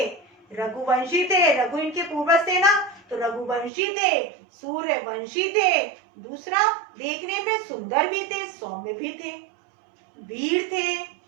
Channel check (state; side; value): drops out; left; at 3.7 s